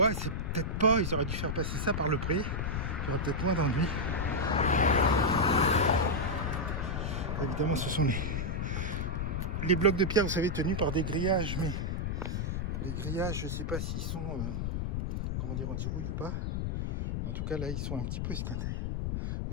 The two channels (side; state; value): left; noise; rumble, 1 dB below the sound